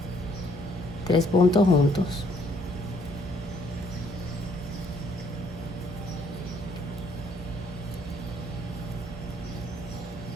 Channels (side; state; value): both; normal; correlation 0.66